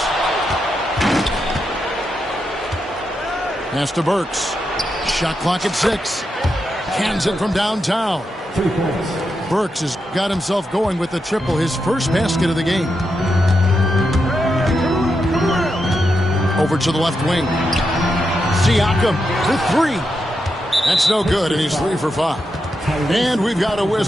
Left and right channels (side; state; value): both; normal; correlation 0.85